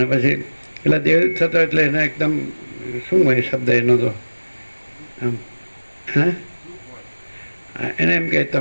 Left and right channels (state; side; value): inverted; both; correlation -1.00